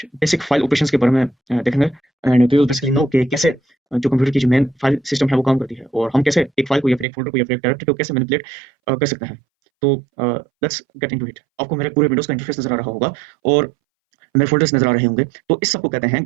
बेसिक फाइल ऑपरेशंस के बारे में देखेंगे and we will basically know कि कैसे जो कंप्यूटर की जो मेन फाइल सिस्टम है वो काम करती है और हम कैसे एक फाइल को या फिर एक फोल्डर को या फिर एक डायरेक्टरी को कैसे मैनिपुलेट कर सकते हैं। तो लेट्स गेट इनटू इट। आपको मेरे पूरे विंडोज का इंटरफेस नजर आ रहा होगा और मेरे फोल्डर्स नजर आ रहे होंगे। तो इस सबको कहते हैं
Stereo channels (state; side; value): drops out; left; at 7.1 s